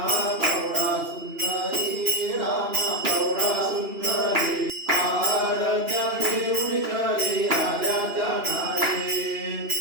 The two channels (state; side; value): late; left; 2.9 ms